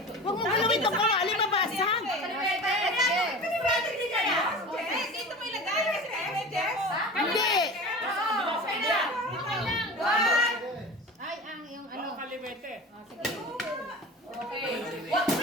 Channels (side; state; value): both; normal; correlation 0.34